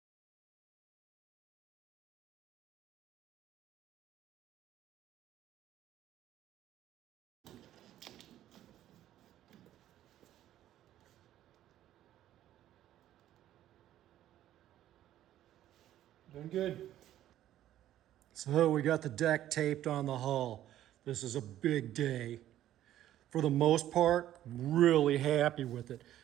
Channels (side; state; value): left; quieter; 12.6 dB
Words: Doing good. So we got the deck taped on the hull. This is a big day. For the most part, really happy with it.